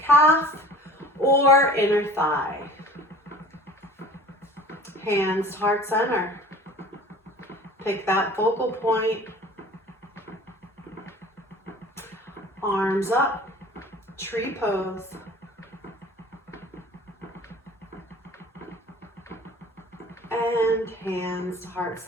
or inner thigh. Hands to heart center. Pick that focal point. Arms up, tree pose. And hands to heart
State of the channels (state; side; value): normal; both; correlation 0.44